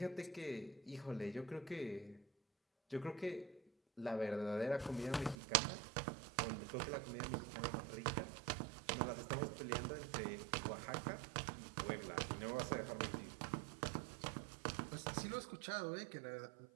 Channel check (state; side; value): drops out; left; at 5.4 s